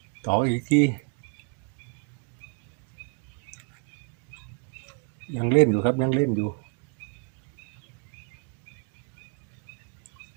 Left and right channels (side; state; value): left; quieter; 34.2 dB